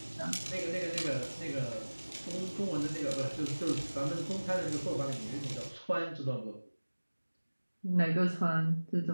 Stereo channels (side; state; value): both; inverted; correlation -1.00